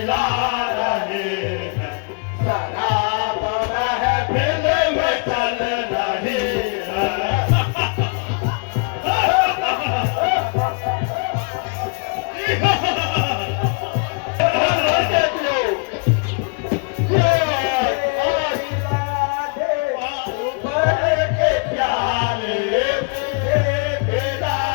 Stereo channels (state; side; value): quieter; right; 35.3 dB